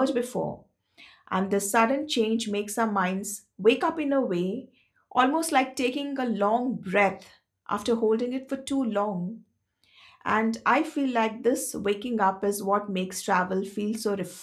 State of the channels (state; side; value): identical; both; correlation 1.00